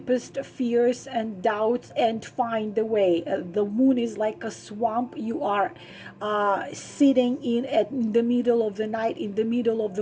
fears and doubts, and find the way. The moon is like a swamp. You are sitting in the middle of the night, in the middle of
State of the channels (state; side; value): identical; both; correlation 1.00